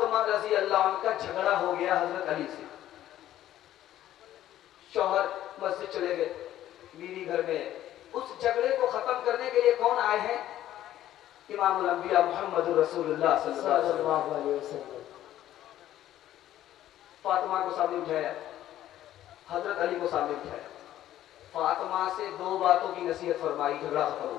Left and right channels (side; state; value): right; quieter; 12.8 dB